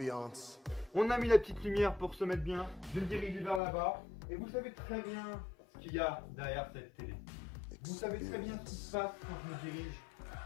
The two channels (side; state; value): right; drops out; at 3.6 s